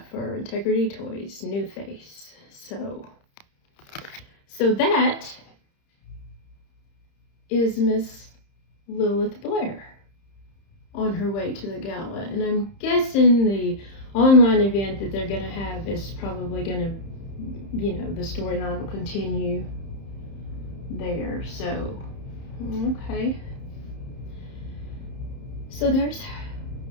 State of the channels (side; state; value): right; late; 30 ms